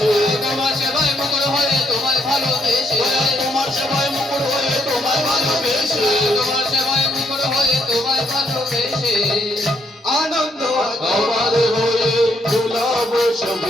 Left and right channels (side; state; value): both; normal; correlation 0.73